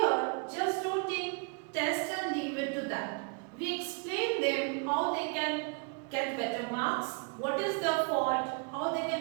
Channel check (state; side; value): quieter; left; 35.8 dB